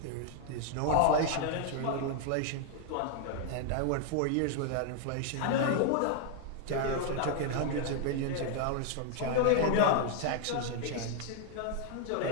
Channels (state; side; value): different; both; correlation 0.00